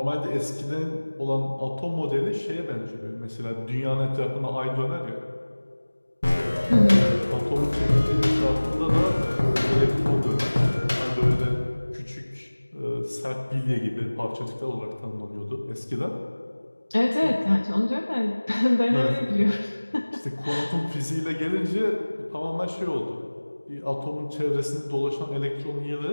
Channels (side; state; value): both; inverted; correlation -1.00